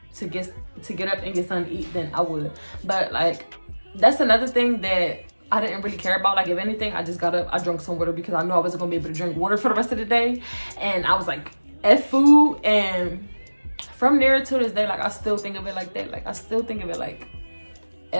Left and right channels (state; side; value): inverted; both; correlation -1.00